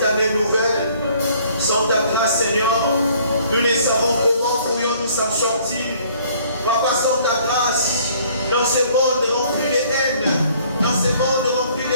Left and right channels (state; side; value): inverted; both; correlation -0.59